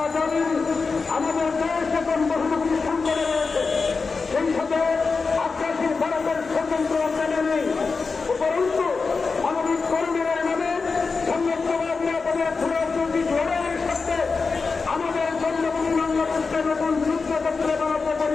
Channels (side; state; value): right; quieter; 4.5 dB